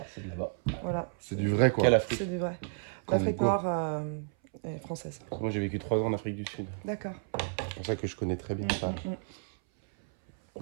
c'est de là-bas. Voilà, C'est du vrai, quoi. Quelle Afrique? c'est du vrai. Comme L'Afrique quoi. noire est française. Moi j'ai vécu 3 ans en Afrique du Sud. D'accord. C'est pour ça que je connais très bien ça.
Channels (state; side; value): silent; left; 57 dB below the other